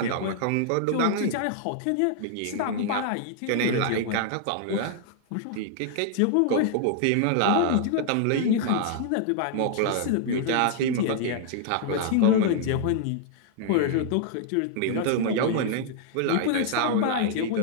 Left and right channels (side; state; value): both; different; correlation -0.01